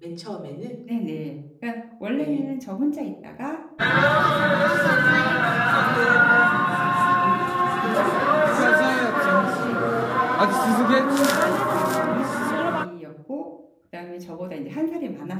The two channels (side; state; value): both; identical; correlation 1.00